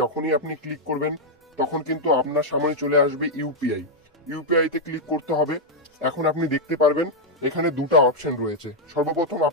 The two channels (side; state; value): both; normal; correlation -0.03